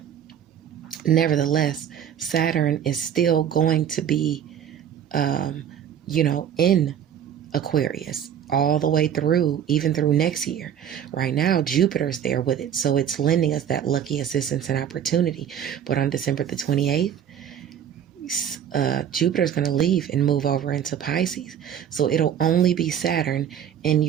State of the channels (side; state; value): left; quieter; 9.2 dB